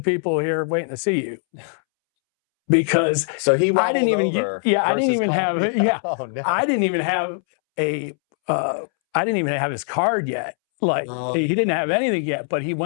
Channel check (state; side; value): silent; right; 65 dB below the other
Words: people here waiting to see you. Because so he I didn't even over I didn't even have oh, no. I didn't even have I didn't even have his card yet. He didn't have anything yet, but he